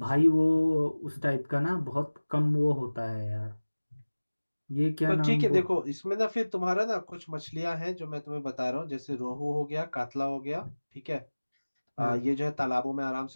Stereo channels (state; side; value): inverted; both; correlation -1.00